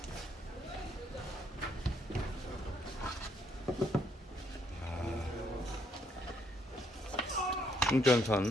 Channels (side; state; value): both; normal; correlation 0.71